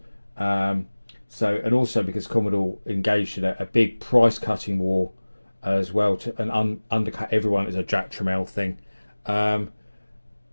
And also because Commodore engaged in a big price-cutting war as well and undercut everyone as a Jack Tramiel thing.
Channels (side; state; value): both; inverted; correlation -1.00